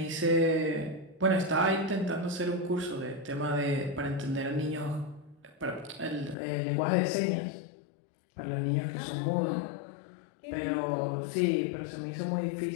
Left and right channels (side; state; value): right; drops out; at 6.4 s